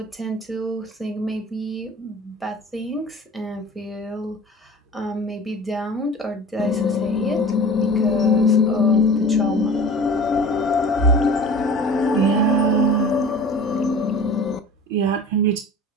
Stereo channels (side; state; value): both; normal; correlation 0.41